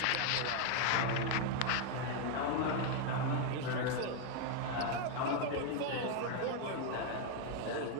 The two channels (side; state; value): both; different; correlation 0.01